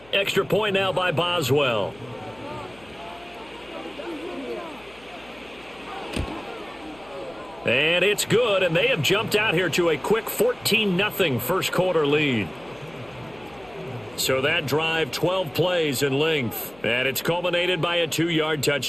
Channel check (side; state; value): left; noise; hum, 25 dB below the sound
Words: Extra point now by Boswell. And it's good, and they have jumped out here to a quick 14-0 first quarter lead. So that drive, 12 plays in length, and it's culminated by a 2-yard